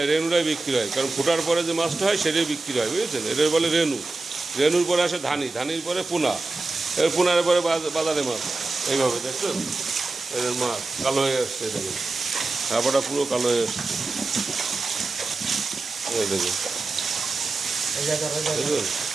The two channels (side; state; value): left; quieter; 3.3 dB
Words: রেনুটাই বিক্রি হয়, কারণ ফোটার পরে যে মাছটা হয় সেটাই বিক্রি হয়, বুঝেছেন? এটার বলে রেনু। রেনুর পরে আসে ধানি, ধানির পরে পোনা, এর পোনার পরে বাজারে মাছ। এইভাবে দেখছেন এদের মাছ কালো হয়ে আসছে, দেখুন চাপাটা পুরো কালো হয়ে আসছে, দেখুন দেখুন।